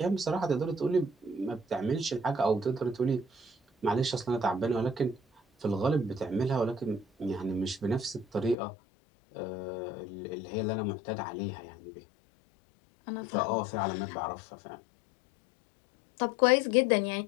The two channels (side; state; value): right; drops out; at 8.6 s